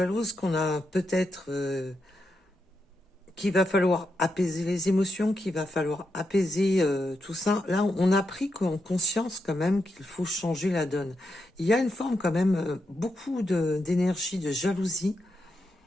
qu'on a peut-être... qu'il va falloir apaiser les émotions, qu'il va falloir apaiser tout ça. Là, on a pris conscience quand même qu'il faut changer la donne. Il y a une forme quand même, beaucoup d'énergie, de jalousie.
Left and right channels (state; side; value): normal; both; correlation 0.84